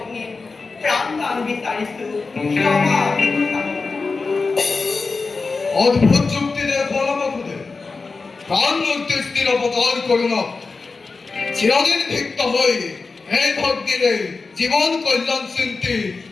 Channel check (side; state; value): right; quieter; 4.2 dB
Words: প্ৰাণ বিচাৰিছো ক্ষমা ভিক্ষা অদ্ভুত যুক্তিতে ফলবকুদে প্রাণ মধ্যে স্থির অবতার করুন চিরদিন ভিক্ত হই এই ভক্তিরে জীবন কল্যাণ চিন্তি